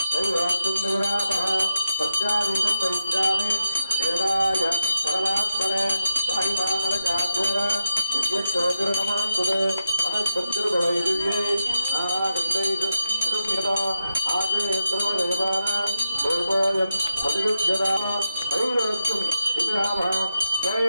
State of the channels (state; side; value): inverted; both; correlation -0.86